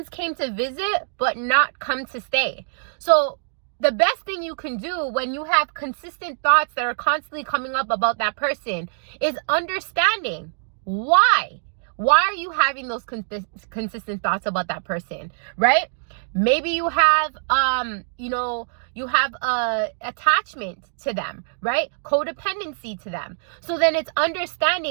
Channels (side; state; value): left; silent; digital silence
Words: came to visit but not come to stay. So the best thing you can do when you have consistent thoughts that are constantly coming up about that person is understanding why. Why are you having those consistent thoughts about that person, right? Maybe you have, you have attachment to them, right? Codependency to them. So then it's